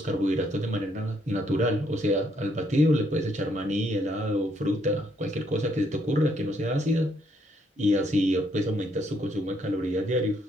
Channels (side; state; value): both; normal; correlation 0.72